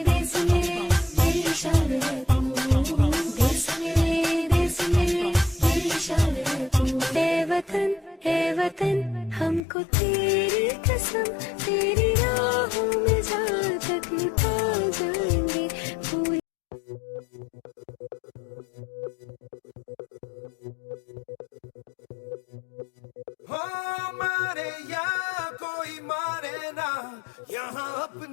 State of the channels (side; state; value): right; drops out; at 9.6 s